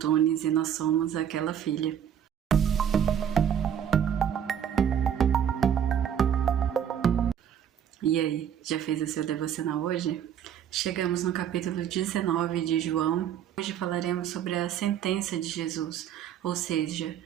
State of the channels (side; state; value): left; quieter; 9.0 dB